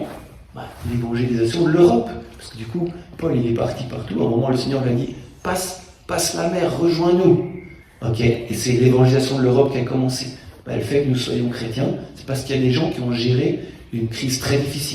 l'évangélisation de l'Europe. Parce que du coup, Paul il est parti partout, à un moment le Seigneur lui a dit « passe la mer, rejoins-nous ». Ok, et c'est l'évangélisation de l'Europe qui a commencé. Le fait que nous soyons chrétiens, c'est parce qu'il y a des gens qui ont géré une crise très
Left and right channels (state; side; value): identical; both; correlation 1.00